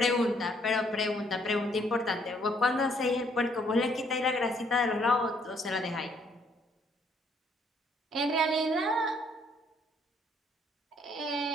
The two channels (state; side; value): normal; both; correlation 0.66